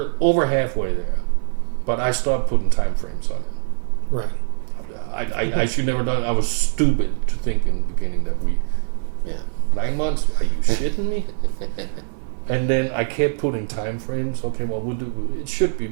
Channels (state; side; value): silent; left; 56 dB below the other